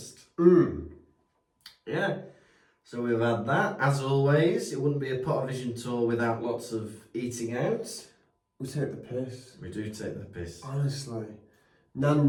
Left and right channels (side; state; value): both; identical; correlation 1.00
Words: Yeah. So we've had that. As always, it wouldn't be a Pottervision tour without lots of eating out. We take the piss. We do take the piss. Honestly.